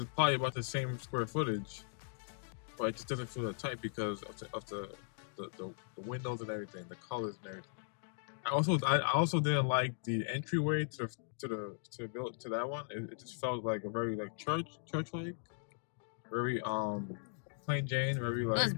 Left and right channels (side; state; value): right; silent; digital silence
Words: probably about the same square footage, but it just doesn't feel that tight because of the windows and everything, the colors and everything. I also didn't like the entryway to that one. It just felt like a very like church like, very plain Jane, very like. It was